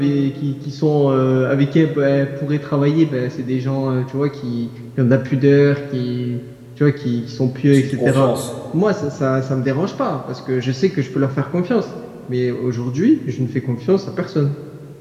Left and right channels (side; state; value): both; identical; correlation 1.00